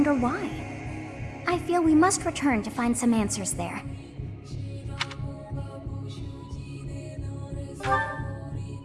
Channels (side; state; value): both; identical; correlation 1.00